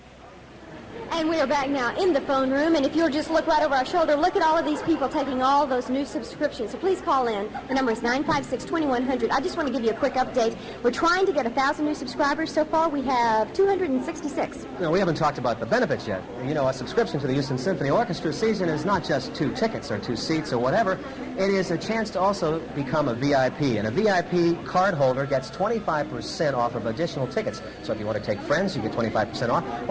And we are back now in the phone room, and if you'll just look right over our shoulder, look at all of these people taking all those new subscriptions. So please call in. The number is 956-2100. I just want to give you a quick update. We're trying to get 1,000 new subscribers. So far, we have 266. No, we haven't talked about the benefits yet. You know, a subscription to the Houston Symphony Orchestra season is not just 2 tickets or 2 seats or whatever. It is a chance to also become a VIP, and a VIP card holder gets 25% off of additional tickets. So if you want to take friends, you get 25% off.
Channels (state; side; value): identical; both; correlation 1.00